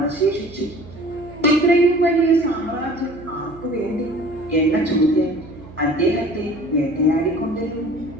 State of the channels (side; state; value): right; noise; hum, 18 dB below the sound